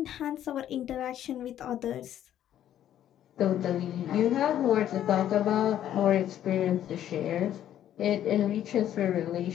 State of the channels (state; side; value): quieter; right; 11.2 dB